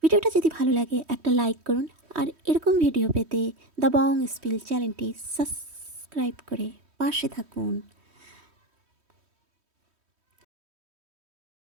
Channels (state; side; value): late; left; 3.1 ms